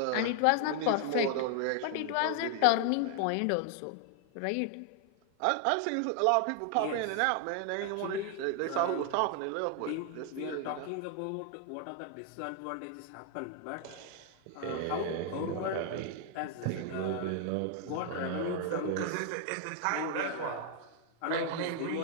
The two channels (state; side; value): different; both; correlation 0.00